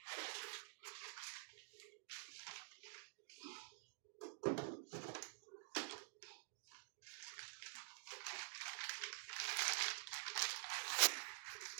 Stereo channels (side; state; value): left; silent; digital silence